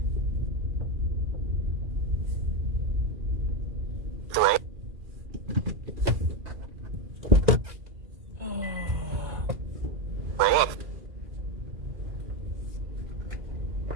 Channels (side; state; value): left; late; 2.4 ms